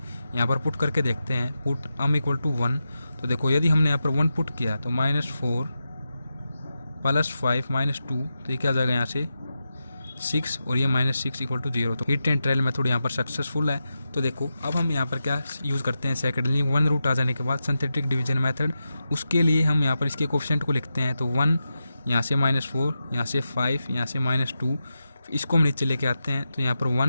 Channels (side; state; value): both; inverted; correlation -0.90